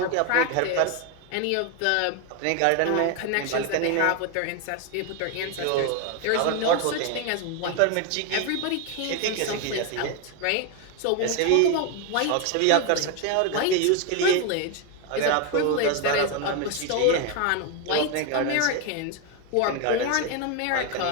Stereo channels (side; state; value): both; different; correlation 0.01